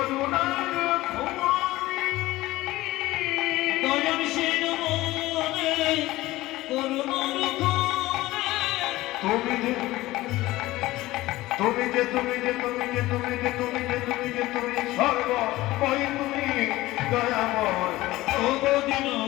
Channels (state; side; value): quieter; right; 17.7 dB